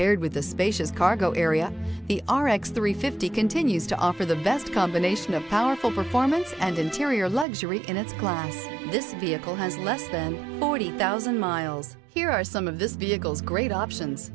with a spacious cargo area, the RX 350 continues to offer the best combination of powerful performance and interior luxury in its class. This vehicle has less than 40,000 miles. Here are some of this vehicle's great options:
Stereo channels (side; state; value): left; drops out; at 7.5 s